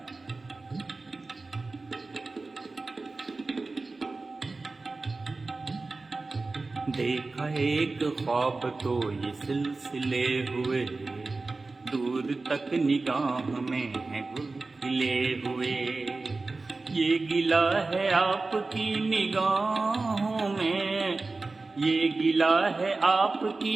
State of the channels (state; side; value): quieter; left; 3.6 dB